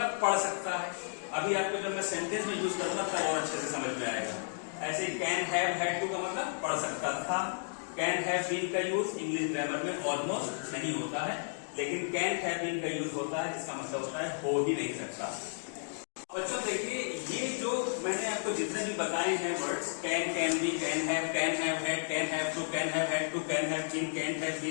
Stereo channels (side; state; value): right; silent; digital silence